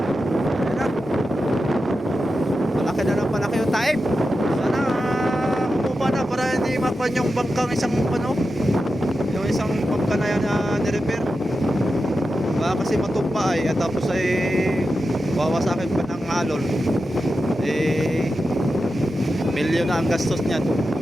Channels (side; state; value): both; normal; correlation 0.90